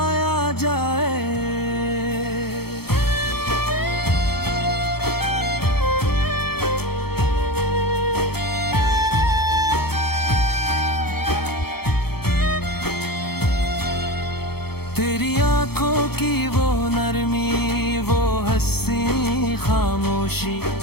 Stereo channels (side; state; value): right; late; 0.96 ms